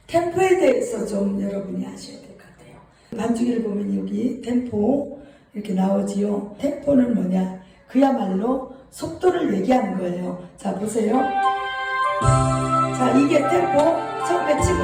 템포에 대해서 좀 여러분이 아셔야 될 것 같아요. 반주기를 보면 여기 템포 이렇게 나오지요. 템포는 뭐냐? 그야말로 속도를 얘기하는 거예요. 자, 보세요. 자, 이게 템포 처음에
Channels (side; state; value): both; identical; correlation 1.00